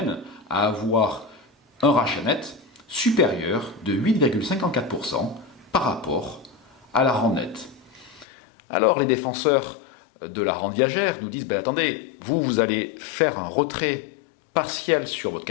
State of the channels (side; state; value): right; drops out; at 8.2 s